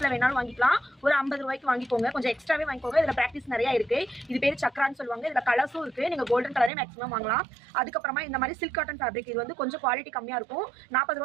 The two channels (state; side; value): drops out; left; at 6.7 s